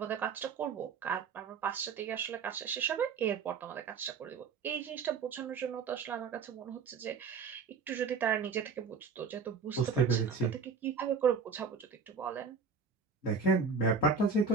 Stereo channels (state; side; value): quieter; left; 5.4 dB